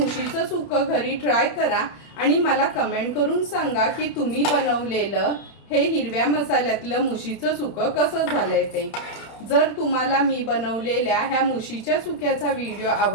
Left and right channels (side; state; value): right; late; 30 ms